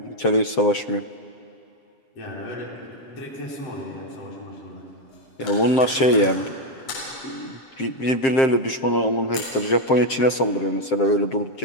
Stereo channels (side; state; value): right; late; 7.6 ms